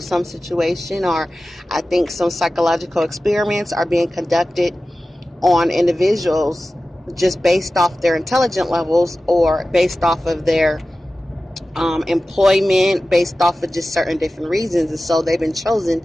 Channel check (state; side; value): normal; both; correlation 0.95